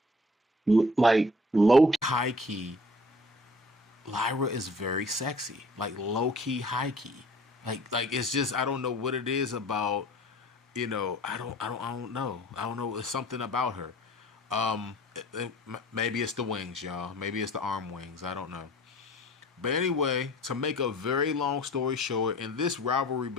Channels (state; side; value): normal; both; correlation 0.50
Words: like low high key, Lyra is very sexy. Like low key, high key. Like it's just I don't know what it is about. I don't know. I don't know. It's something about her. Maybe it's the wings, y'all. Maybe it's the arm wings. I don't know. But anyway, to make a very long story short, in this rivalry